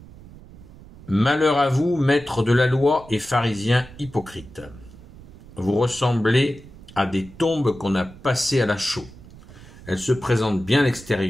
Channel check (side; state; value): right; noise; rumble, 19 dB below the sound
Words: Malheur à vous, maîtres de la loi et pharisiens hypocrites. Vous ressemblez à des tombes qu'on a passées à la chaux. Elles se présentent bien à